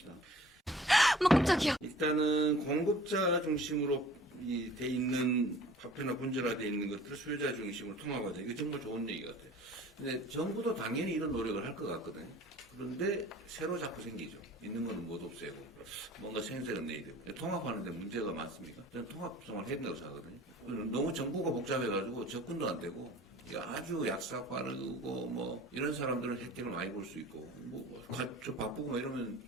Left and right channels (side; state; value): both; normal; correlation 0.48